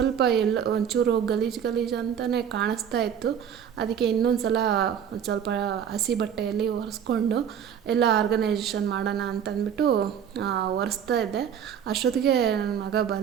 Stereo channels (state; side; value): quieter; left; 8.5 dB